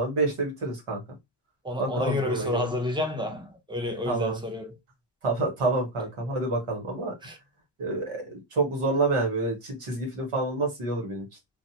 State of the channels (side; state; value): both; normal; correlation 0.07